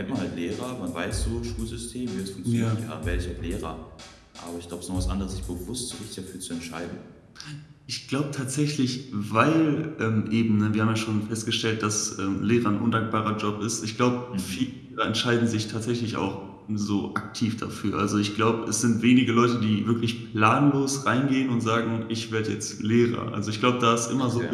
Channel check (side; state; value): both; identical; correlation 1.00